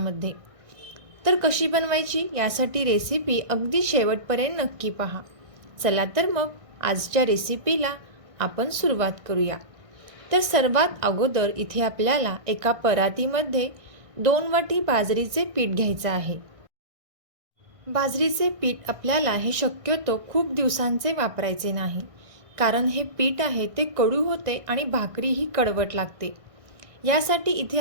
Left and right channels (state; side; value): late; left; 1.6 ms